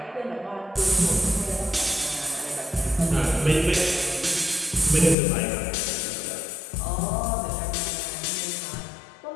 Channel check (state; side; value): drops out; right; at 5.2 s